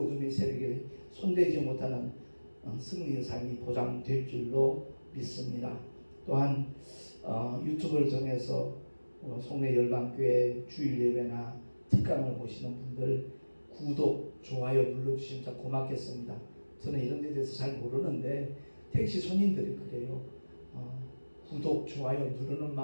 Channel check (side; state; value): both; inverted; correlation -1.00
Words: 어둠의 세력에 손대지 못하는 승리의 삶이 보장될 줄로 믿습니다. 또한 유튜브를 통해서 송내 열방교회 주일 예배나 특강을 보시는 분들 구독, 좋아요 눌러주시면 참 고맙겠습니다. 저는 이런 데 대해서 잘 모르는데 택시 손님들이 그래요. 구독, 좋아요 누르는